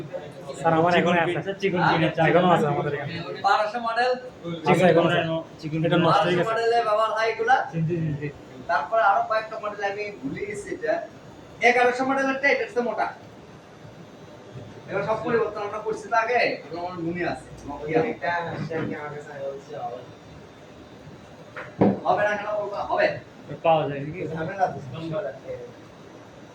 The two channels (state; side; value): identical; both; correlation 1.00